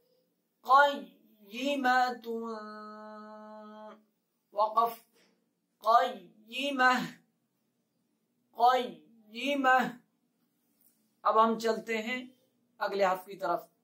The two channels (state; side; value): identical; both; correlation 1.00